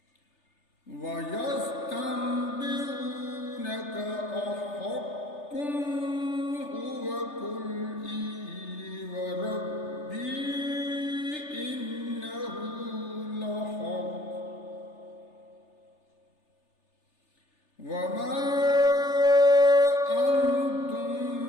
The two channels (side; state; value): right; late; 3.4 ms